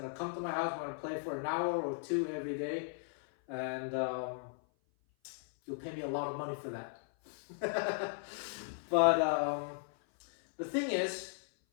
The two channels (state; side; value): silent; right; 53 dB below the other